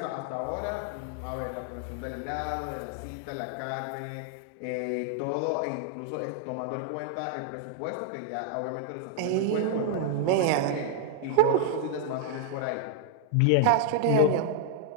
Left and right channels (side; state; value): both; different; correlation -0.01